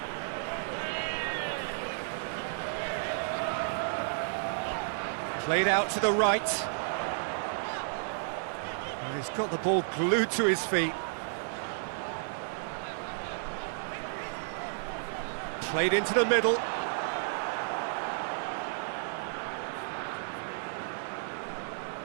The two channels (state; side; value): silent; left; 56 dB below the other